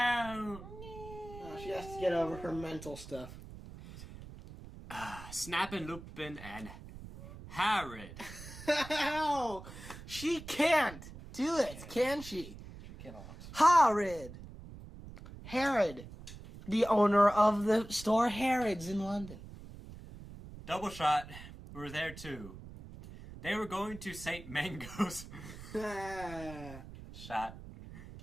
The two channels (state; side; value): noise; right; rumble, 14 dB below the sound